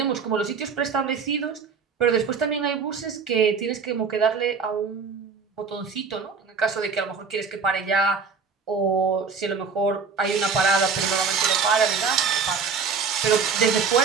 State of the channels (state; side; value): quieter; left; 5.4 dB